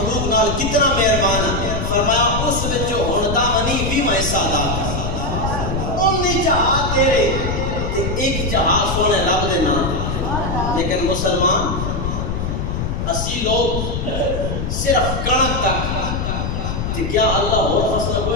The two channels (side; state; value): left; noise; rumble, 2 dB below the sound